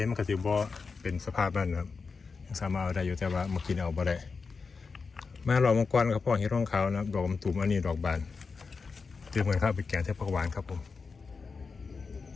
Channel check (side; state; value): right; quieter; 4.8 dB